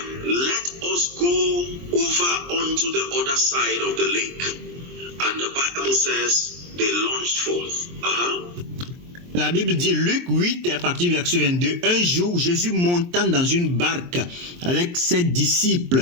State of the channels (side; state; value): left; late; 23 ms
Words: let us go over unto the other side of the lake. And the Bible says they launched forth. La Bible dit, Luc 8, à partir du verset 22, un jour, Jésus montant dans une barque avec ses